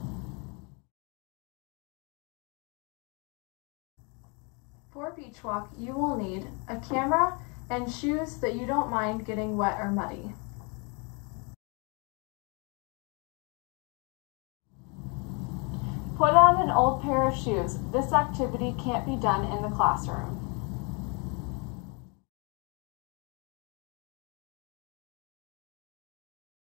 For Beach Walk, you will need a camera and shoes that you don't mind getting wet or muddy. Put on an old pair of shoes. This activity can't be done in the classroom.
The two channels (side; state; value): right; quieter; 33.1 dB